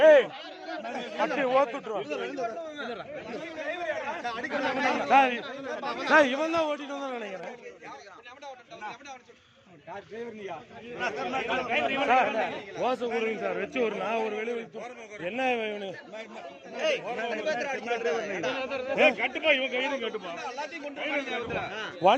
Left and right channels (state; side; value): identical; both; correlation 1.00